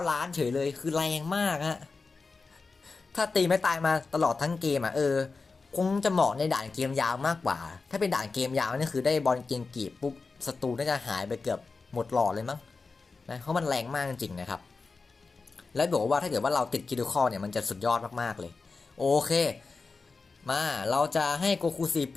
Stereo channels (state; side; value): quieter; right; 4.2 dB